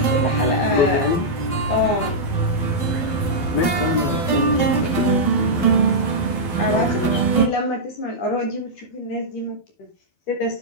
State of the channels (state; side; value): late; right; 12 ms